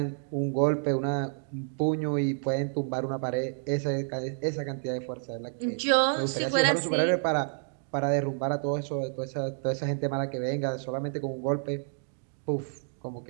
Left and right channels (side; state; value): left; silent; digital silence